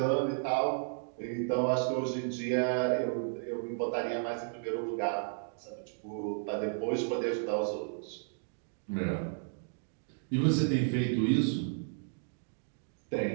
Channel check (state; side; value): silent; left; digital silence